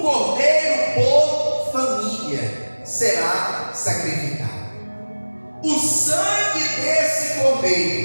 cordeiro por família será sacrificado. O sangue desse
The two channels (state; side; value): inverted; both; correlation -1.00